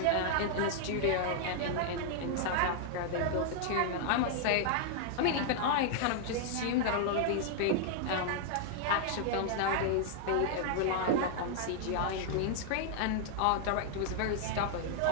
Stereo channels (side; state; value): both; different; correlation 0.00